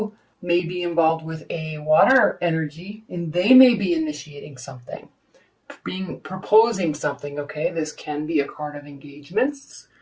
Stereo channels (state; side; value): identical; both; correlation 1.00